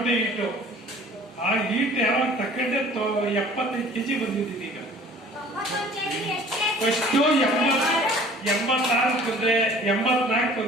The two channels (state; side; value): normal; both; correlation 0.49